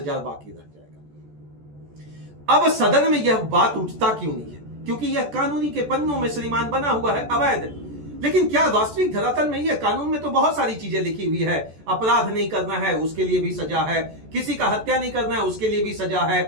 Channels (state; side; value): late; left; 14 ms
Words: बाकी रह जाएगा। अब सदन में यह बात उठता क्यों नहीं है? क्योंकि यह कानूनी के पन्नों में श्रीमान बना हुआ है अवैध। लेकिन क्या वास्तविक धरातल में यह कानून में तो बहुत सारी चीजें लिखी हुई है, अपराध नहीं करना है उसके लिए भी सजा है, किसी का हत्या नहीं करना है उसके लिए भी सजा है,